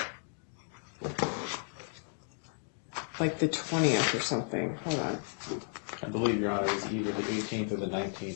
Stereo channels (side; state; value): right; silent; 55 dB below the other